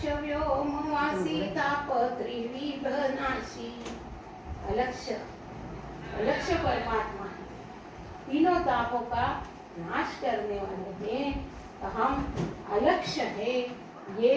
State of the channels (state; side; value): identical; both; correlation 1.00